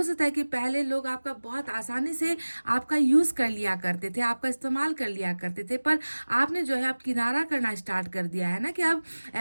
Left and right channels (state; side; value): inverted; both; correlation -1.00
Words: सकता है कि पहले लोग आपका बहुत आसानी से आपका यूज कर लिया करते थे, आपका इस्तेमाल कर लिया करते थे, पर आपने जो है अब किनारा करना स्टार्ट कर दिया है ना, कि अब